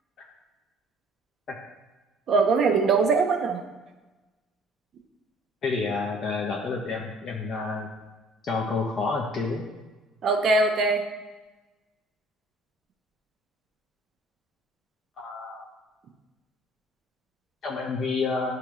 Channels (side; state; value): both; normal; correlation 0.54